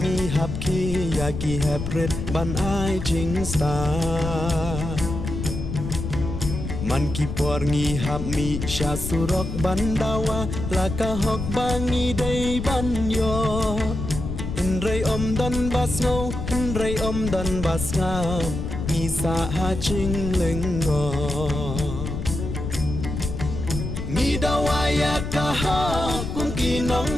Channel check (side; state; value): left; noise; rumble, 5 dB below the sound